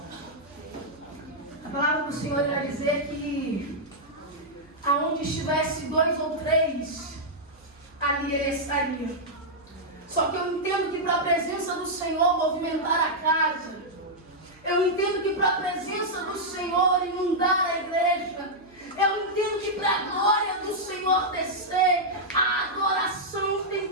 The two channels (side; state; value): right; noise; hum, 29 dB below the sound